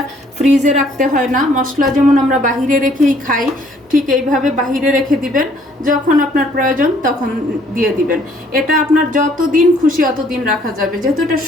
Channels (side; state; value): both; normal; correlation 0.62